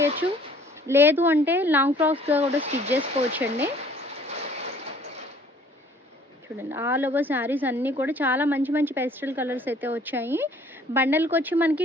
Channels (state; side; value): normal; both; correlation 0.56